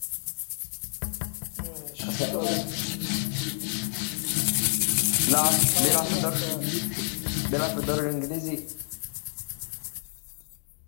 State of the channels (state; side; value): silent; right; digital silence